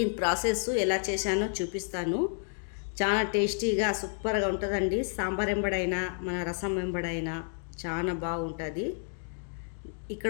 ప్రాసెస్ ఎలా చేశానో చూపిస్తాను. చాలా టేస్టీగా సూపర్గా ఉంటుందండి. సాంబార్ వెంబడైనా మన రసం వెంబడైనా చాలా బాగుంటుంది.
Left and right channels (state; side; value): silent; right; digital silence